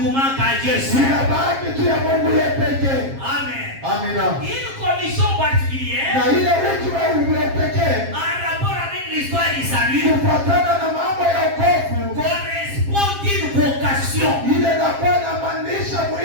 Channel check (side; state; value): left; late; 7.5 ms